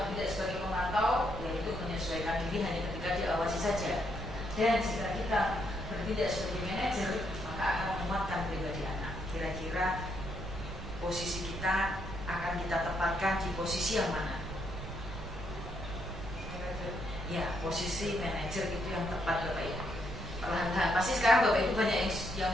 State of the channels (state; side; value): noise; right; rumble, 9 dB below the sound